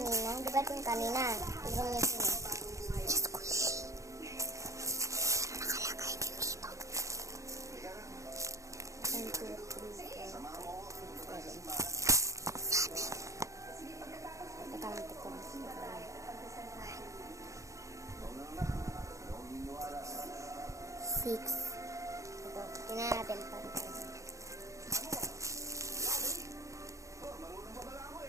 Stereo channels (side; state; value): left; late; 0.15 ms